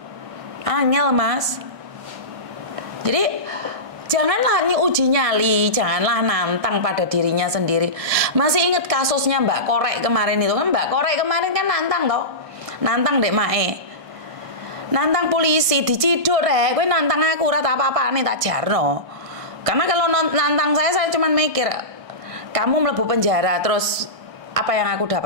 Angel, Mas. Jadi janganlah uji nyali, janganlah nantang pada dirinya sendiri. Masih ingat kasusnya Mbak Korek kemarin itu kan? Mbak Korek kemarin kan nantang toh. Nantang Dek Mae. Nantang polisi diciduk rek, kowe nantang aku ora tak apa-apane tak jarno. Karena kalau nantang saya cuma mikir kamu mlebu penjara terus apa yang aku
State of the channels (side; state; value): left; late; 1.6 ms